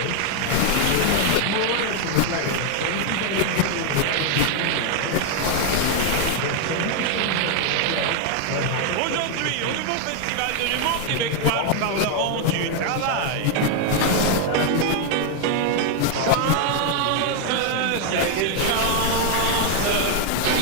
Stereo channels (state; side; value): different; both; correlation 0.00